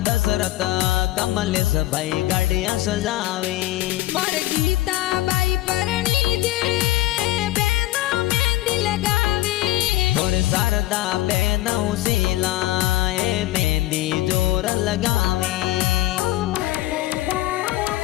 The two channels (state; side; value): quieter; right; 16.3 dB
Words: दशरथ कमलेश भाई गाड़ियां सजावे मोर गीताबाई परणी जे बेनो मेहंदी लगावी और शारदा बेन उसीला ए मेहंदी जोर लगावे